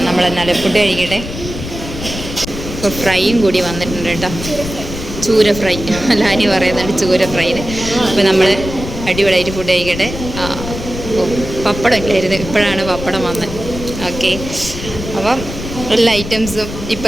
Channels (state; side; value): noise; left; rumble, 9 dB below the sound